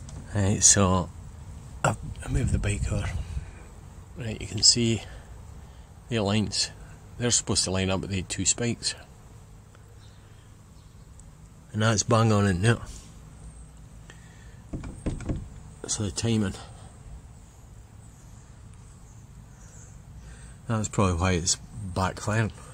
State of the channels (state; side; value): identical; both; correlation 1.00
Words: Right, so I moved the bike over. Right, you can see the lines. They're supposed to line up with the two spikes. And that's bang on in there. So the timing. That's probably why it's backfiring.